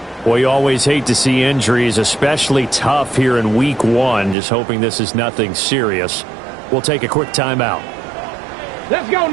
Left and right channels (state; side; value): drops out; left; at 4.4 s